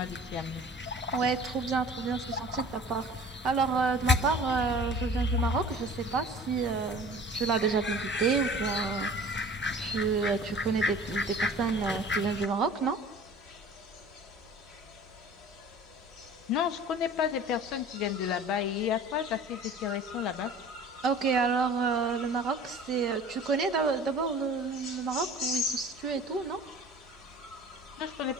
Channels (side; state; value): both; normal; correlation 0.45